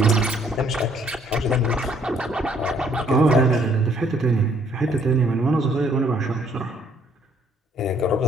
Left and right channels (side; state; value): both; normal; correlation 0.64